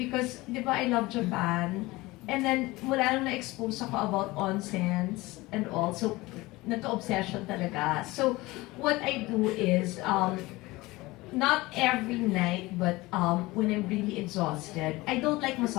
di ba, I love Japan. And then, mula nung na-expose ako about onsens and all. So, nagka-obsession talaga. So, what I do is, not every night, but when I'm really exhausted, I don't like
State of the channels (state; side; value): quieter; right; 20.7 dB